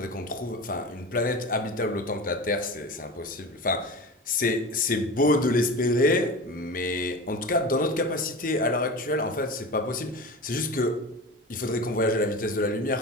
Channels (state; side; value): normal; both; correlation 0.30